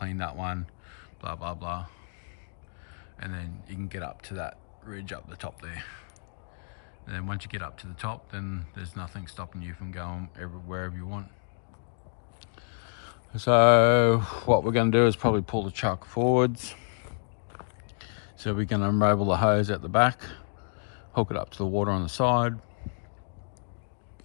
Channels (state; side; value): silent; right; 58 dB below the other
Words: that one, blah blah blah, and then you can get up to that ridge up the top there. And then once you get up to the top, then there's nothing stopping you from going wherever you want. So what we're going to do is probably pull the truck forwards. So we can unravel the hose at the back, hook it up to the water on the side.